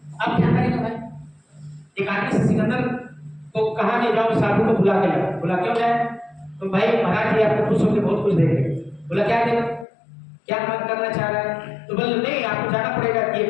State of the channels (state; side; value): drops out; right; at 9.9 s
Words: अब क्या करेगा भाई? एक आदमी से सिकंदर को कहा कि जाओ साधु को बुला के लाओ। बोला क्यों जाए? तो भाई महाराज जी आपको खुश होकर बहुत कुछ देंगे। बोला क्या देगा, क्या मन करना चाह रहा है? तो बोले नहीं आपको जाना पड़ेगा, ये